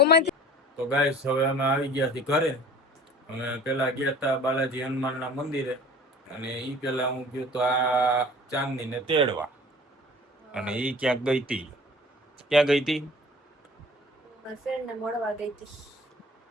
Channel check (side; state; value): both; normal; correlation 0.45